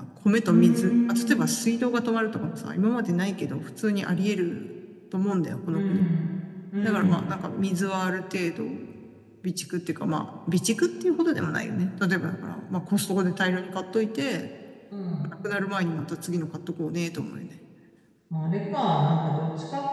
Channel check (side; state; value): both; identical; correlation 1.00